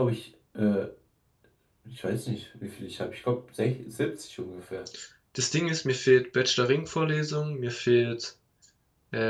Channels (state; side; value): identical; both; correlation 1.00